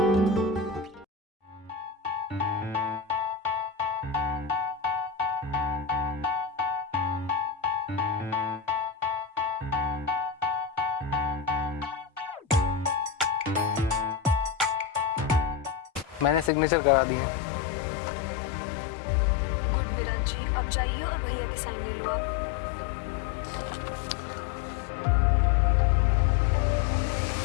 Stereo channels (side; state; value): right; drops out; at 16.5 s